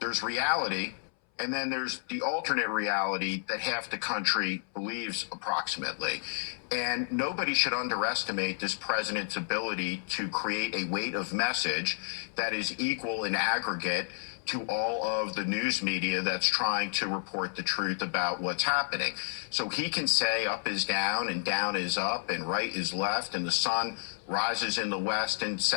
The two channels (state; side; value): silent; right; 57 dB below the other